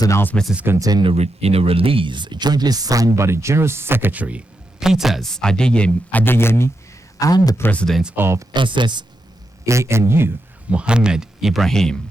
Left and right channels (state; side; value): late; right; 17 ms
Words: announcement is contained in a release jointly signed by the General Secretary, Peters Adeyemi, and the President of SSANU, Mohammed Ibrahim.